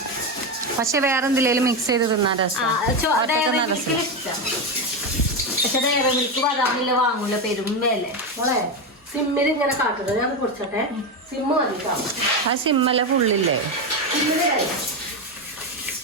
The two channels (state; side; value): normal; both; correlation 0.13